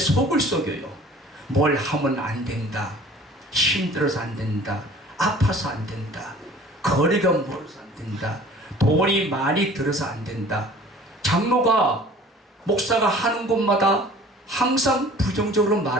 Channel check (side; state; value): both; normal; correlation 0.48